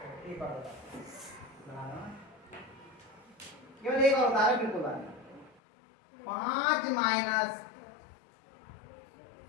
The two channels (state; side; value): drops out; right; at 5.6 s